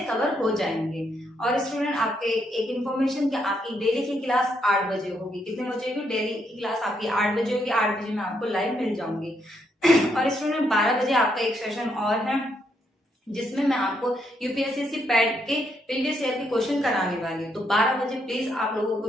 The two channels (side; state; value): both; normal; correlation 0.76